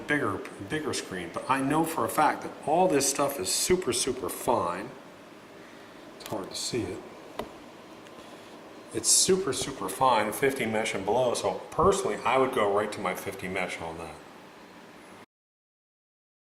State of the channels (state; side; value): identical; both; correlation 1.00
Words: bigger screen. But I know for a fact that all this stuff is super, super fine. It's hard to see it. It's super, super fine, 50 mesh and below, so personally I would go right to my 50 mesh on that.